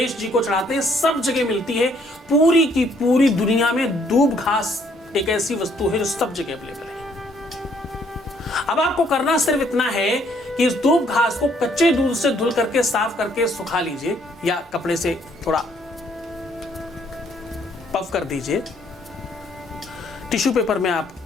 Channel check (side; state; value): both; normal; correlation 0.66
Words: जी को चढ़ाते हैं, सब जगह मिलती है। पूरी की पूरी दुनिया में दूब घास एक ऐसी वस्तु है जो सब जगह अवेलेबल है। अब आपको करना सिर्फ इतना है कि इस दूब घास को कच्चे दूध से धुल करके साफ करके सुखा लीजिए, या कपड़े से थोड़ा पफ कर दीजिए। टिश्यू पेपर में आप